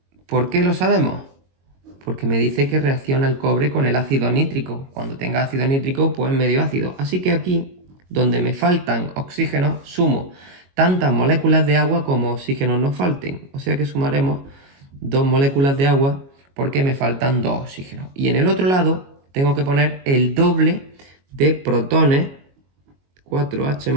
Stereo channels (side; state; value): left; late; 22 ms